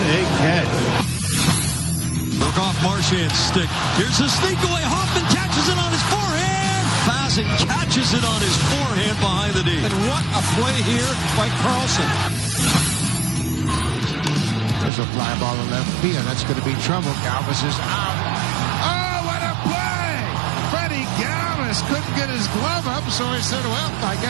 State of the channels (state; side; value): drops out; left; at 14.9 s